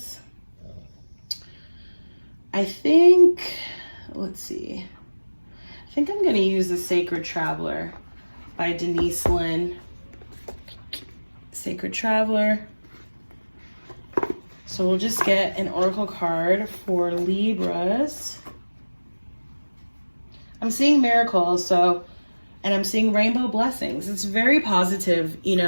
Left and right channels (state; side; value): inverted; both; correlation -1.00